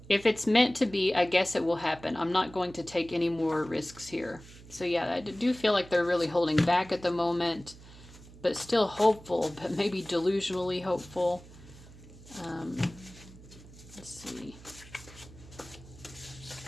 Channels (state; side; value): noise; right; hum, 19 dB below the sound